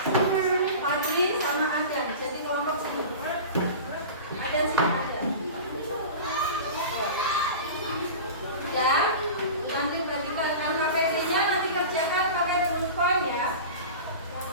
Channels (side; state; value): both; inverted; correlation -0.33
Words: Fadli, sama Adan. Jadi kelompok sini. Adan sini ada. Ya, nanti bagikan KPD-nya, nanti kerjakan pakai bullpoint ya.